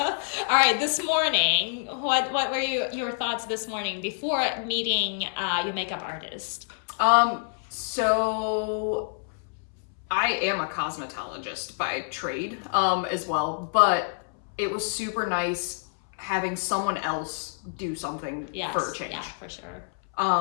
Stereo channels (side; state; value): right; silent; 60 dB below the other